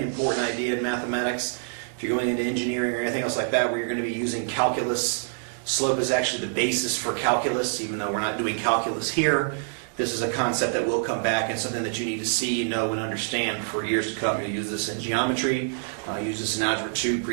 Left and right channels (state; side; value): silent; left; digital silence